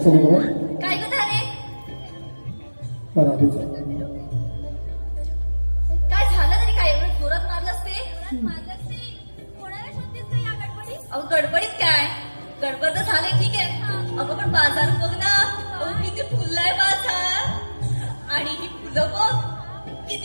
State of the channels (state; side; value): inverted; both; correlation -1.00